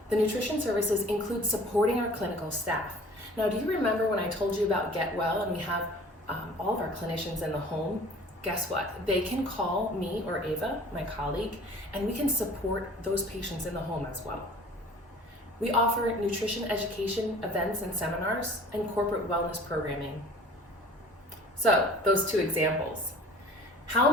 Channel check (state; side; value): normal; both; correlation 0.47